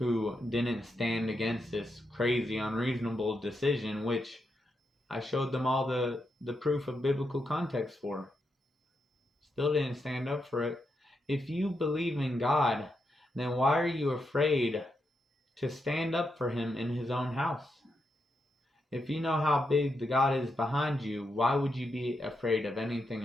didn't stand against this crazy, unreasonable decision, which I showed them all the proof of biblical context for. Still didn't stand up for it. If you believe in God, then why are you afraid to stand up for Him in His own house? If you know how big the God is behind you, why would you be afraid of anything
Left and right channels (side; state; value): both; normal; correlation 0.84